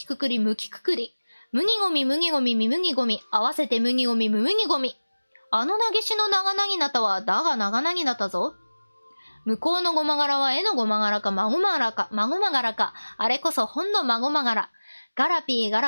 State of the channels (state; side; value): inverted; both; correlation -1.00